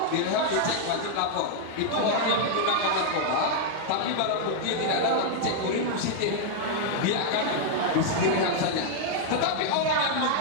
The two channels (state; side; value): different; both; correlation -0.01